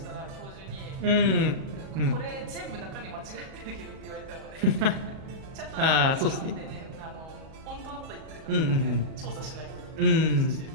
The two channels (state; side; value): late; left; 38 ms